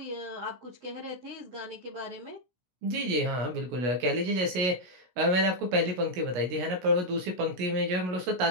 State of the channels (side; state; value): left; late; 16 ms